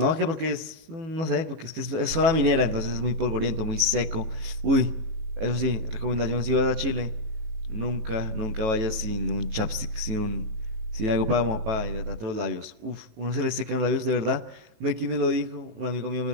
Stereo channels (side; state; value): left; late; 18 ms